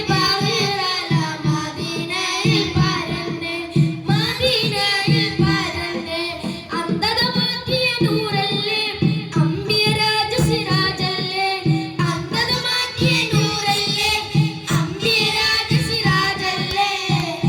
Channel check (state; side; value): identical; both; correlation 1.00